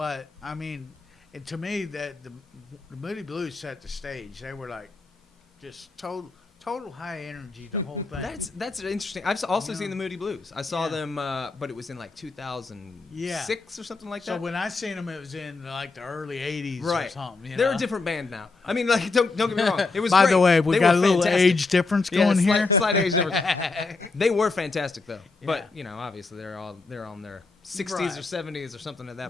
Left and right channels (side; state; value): right; quieter; 3.8 dB